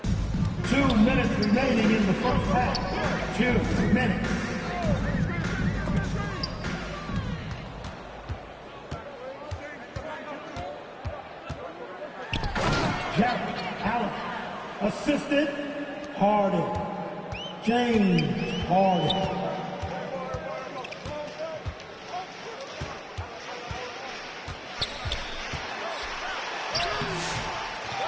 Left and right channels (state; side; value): identical; both; correlation 1.00